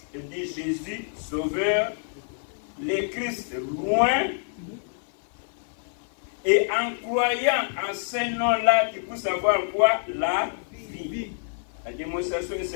on dit Jésus, Sauveur, le Christ loin. Et en croyant en ce nom-là, tu peux savoir quoi? La vie. La démonstration est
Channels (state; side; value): silent; right; 56 dB below the other